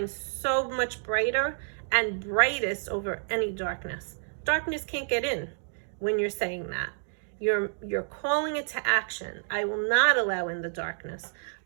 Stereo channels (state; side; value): silent; left; digital silence